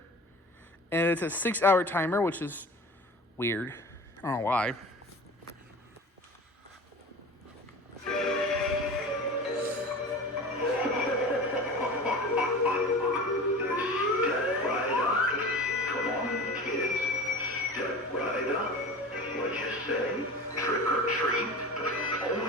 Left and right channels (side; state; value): both; normal; correlation 0.36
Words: And it's a 6-hour timer, which is weird. I don't know why. Say, trick or treat.